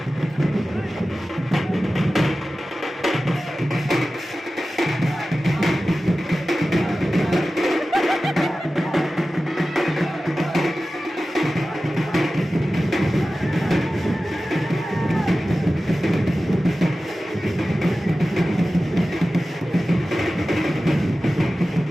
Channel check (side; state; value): both; normal; correlation 0.95